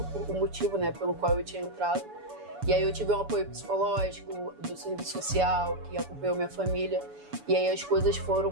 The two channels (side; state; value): left; late; 7.0 ms